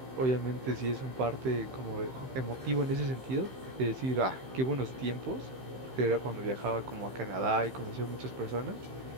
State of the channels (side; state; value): left; late; 15 ms